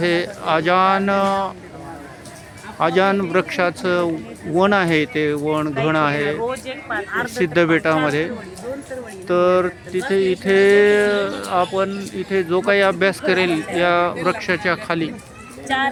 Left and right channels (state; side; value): identical; both; correlation 1.00